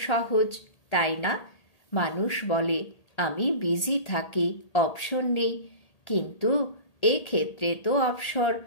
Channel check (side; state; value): right; late; 1.8 ms